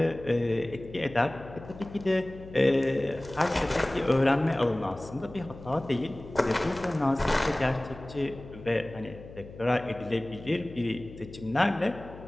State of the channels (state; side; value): noise; left; hum, 16 dB below the sound